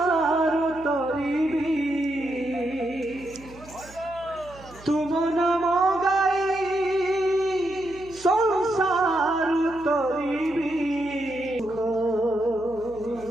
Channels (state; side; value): noise; right; hum, 21 dB below the sound